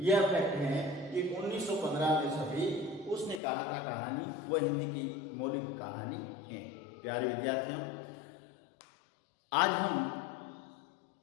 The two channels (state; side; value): drops out; right; at 3.4 s